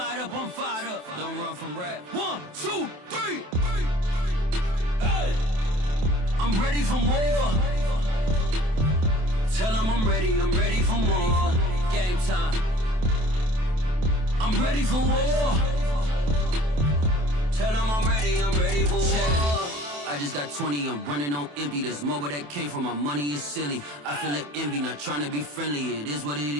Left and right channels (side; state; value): left; late; 27 ms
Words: up, I'm fired up. Don't run from rap. 1, 2, 3. Hey. I'm ready for more. Tell them I'm ready for more. Game time. I'm ready for war. Tell them I'm ready for war. I just got 20, I'm running on empty. This mobile that came from my money is silly. I feel it envy, not trying to be friendly. It is what it